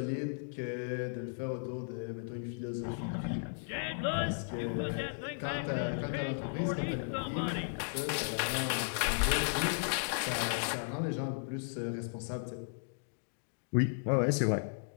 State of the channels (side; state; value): right; silent; digital silence